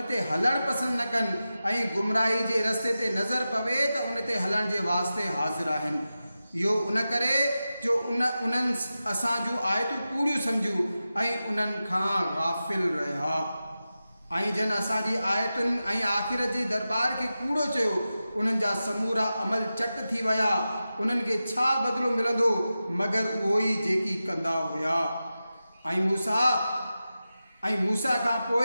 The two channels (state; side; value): inverted; both; correlation -0.93